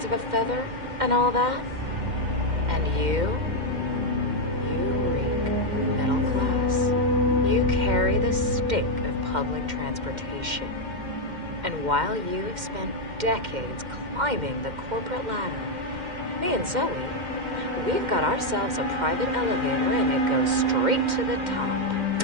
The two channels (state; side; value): late; left; 2.1 ms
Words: of a feather, and all that. And you reek of middle class. You carry the stink of public transportation. And while you have spent decades climbing the corporate ladder, me and Zoe, we've got ourselves a private elevator and it goes straight to the top.